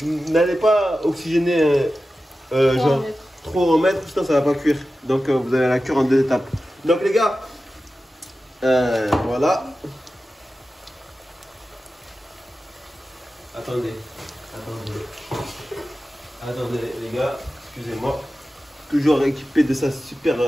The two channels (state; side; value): normal; both; correlation 0.94